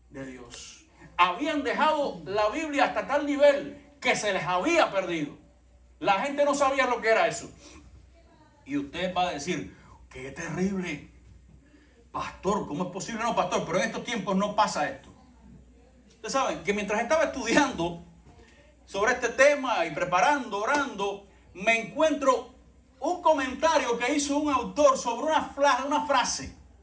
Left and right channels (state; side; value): identical; both; correlation 1.00